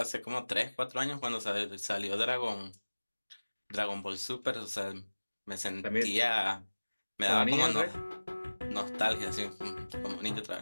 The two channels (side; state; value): both; inverted; correlation -1.00